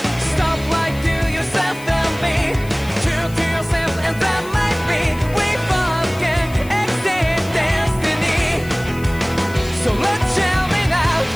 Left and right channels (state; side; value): noise; left; hiss, 19 dB below the sound